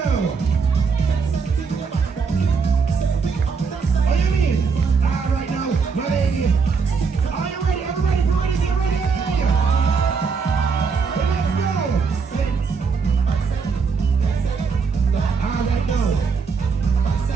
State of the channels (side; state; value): left; quieter; 5.3 dB